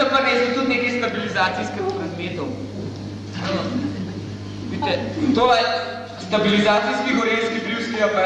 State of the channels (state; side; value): identical; both; correlation 1.00